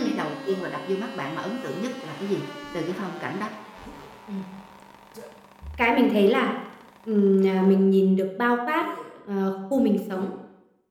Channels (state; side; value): identical; both; correlation 1.00